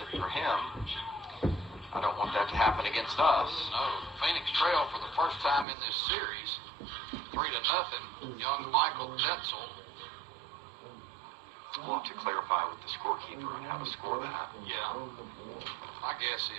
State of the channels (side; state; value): left; drops out; at 5.7 s